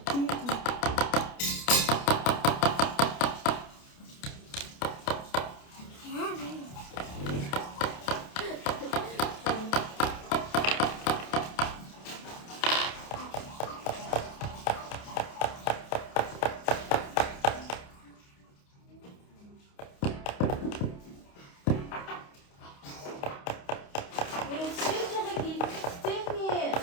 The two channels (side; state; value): right; late; 29 ms